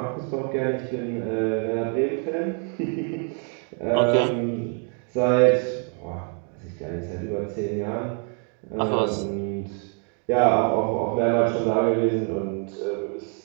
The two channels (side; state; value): left; quieter; 39.3 dB